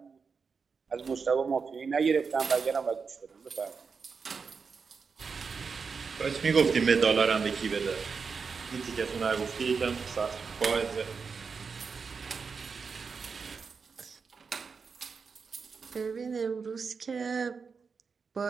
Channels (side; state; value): left; quieter; 5.3 dB